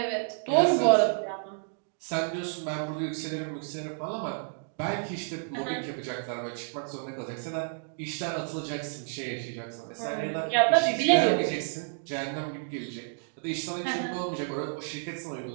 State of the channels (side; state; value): left; silent; digital silence